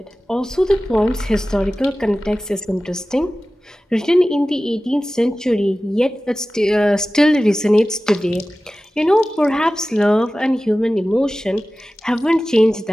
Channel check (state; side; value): normal; both; correlation 0.96